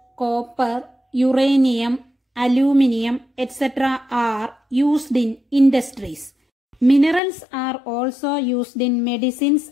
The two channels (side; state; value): right; drops out; at 7.2 s